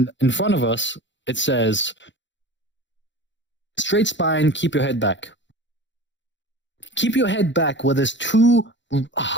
in front of us it says, "Straight spine, keep your head back." Keep your head back. Where there's 2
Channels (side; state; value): right; late; 0.53 ms